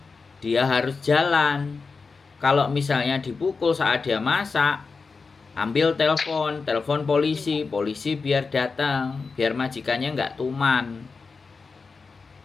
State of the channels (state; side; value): quieter; right; 4.6 dB